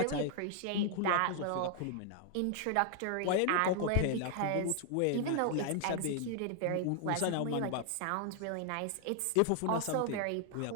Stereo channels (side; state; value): both; different; correlation 0.00